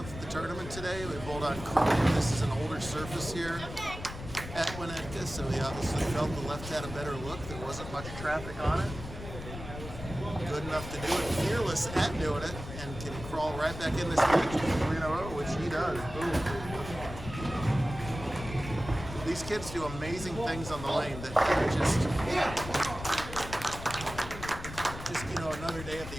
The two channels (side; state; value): left; noise; rumble, 10 dB below the sound